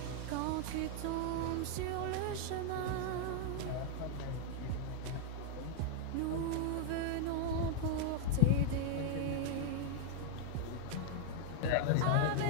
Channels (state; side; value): different; both; correlation 0.00